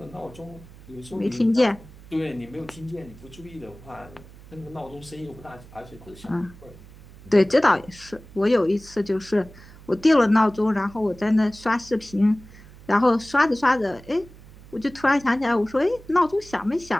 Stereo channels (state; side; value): noise; right; hum, 20 dB below the sound